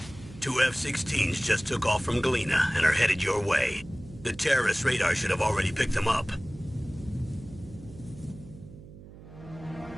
2 F-16s just took off from Galena and are headed your way. The terrorist radar should have already picked them up.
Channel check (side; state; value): right; noise; hum, 17 dB below the sound